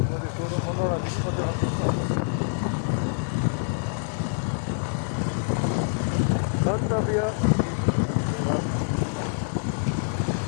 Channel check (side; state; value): right; silent; 61 dB below the other